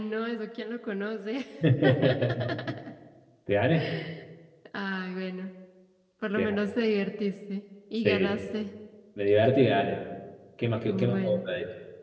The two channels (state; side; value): identical; both; correlation 1.00